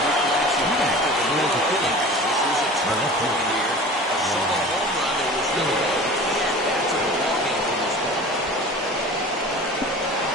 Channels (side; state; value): both; normal; correlation 0.39